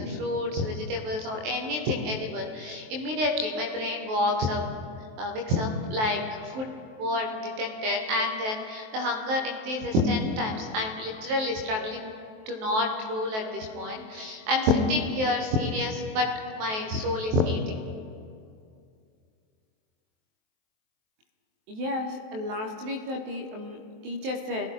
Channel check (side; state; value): left; late; 23 ms